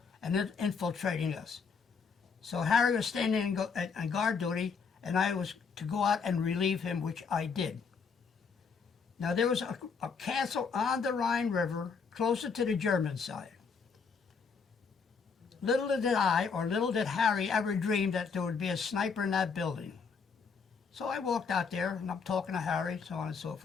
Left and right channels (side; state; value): right; quieter; 5.5 dB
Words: and then infiltrating us. So Harry was standing on guard duty, and I was to go out and relieve him, which I did. Now there was a castle on the Rhine River closer to the German side. Little did I, or little did Harry, ever dream that there would be a sniper in that building. So I walked out there, and I'm talking to Harry, so on and so